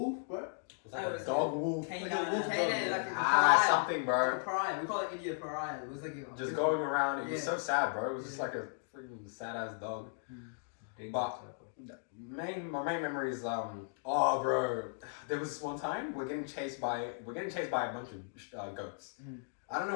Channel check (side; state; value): right; silent; digital silence